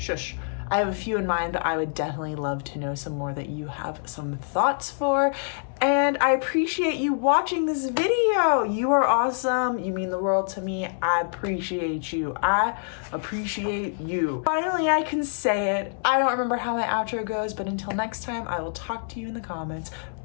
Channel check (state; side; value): silent; right; digital silence